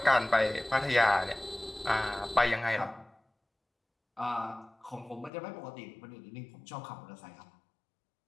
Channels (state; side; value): drops out; right; at 5.3 s